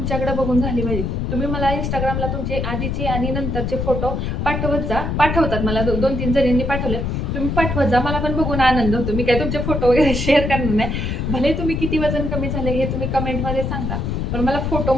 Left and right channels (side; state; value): left; noise; rumble, 1 dB below the sound